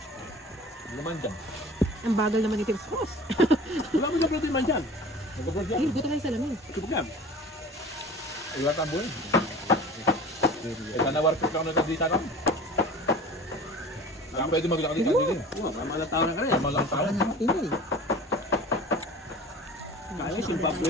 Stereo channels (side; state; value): both; normal; correlation 0.40